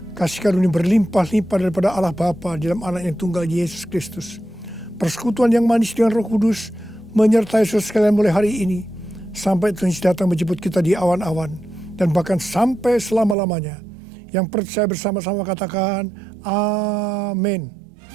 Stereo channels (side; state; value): left; drops out; at 13.4 s